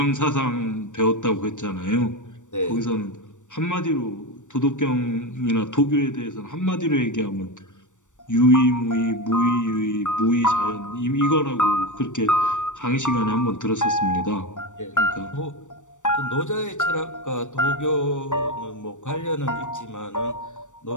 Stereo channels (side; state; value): right; late; 0.85 ms